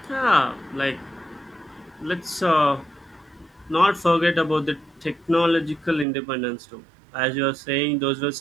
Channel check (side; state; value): left; drops out; at 6.1 s